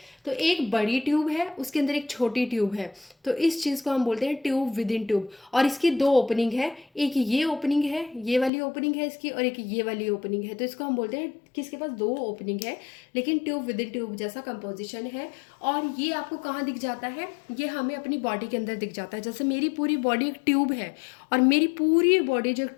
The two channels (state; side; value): drops out; right; at 8.5 s